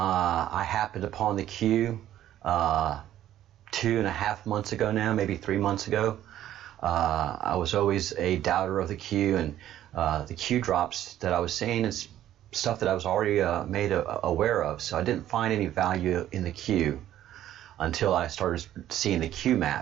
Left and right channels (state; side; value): quieter; left; 12.3 dB